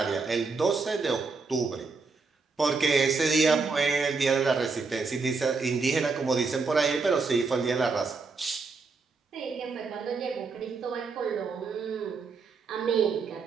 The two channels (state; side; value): quieter; left; 4.4 dB